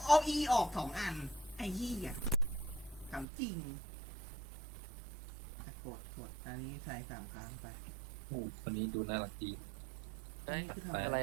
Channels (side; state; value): left; drops out; at 3.2 s